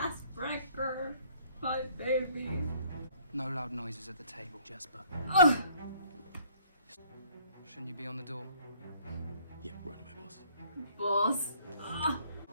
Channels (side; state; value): both; inverted; correlation -0.59